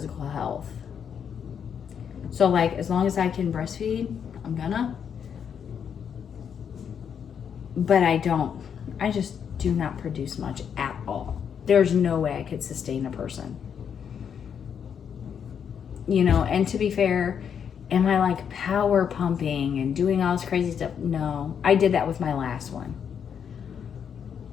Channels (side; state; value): right; quieter; 7.7 dB